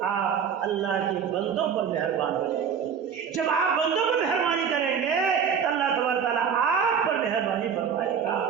آپ اللہ کے بندوں پر مہربان بنیں۔ جب آپ بندوں پر مہربانی کریں گے تو اللہ تبارک تعالیٰ آپ پر مہربانی فرمائے گا۔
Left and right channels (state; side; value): quieter; left; 7.3 dB